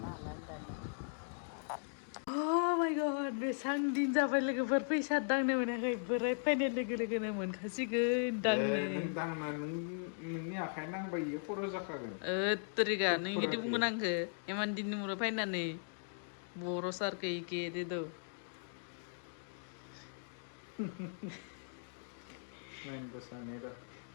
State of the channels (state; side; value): silent; right; digital silence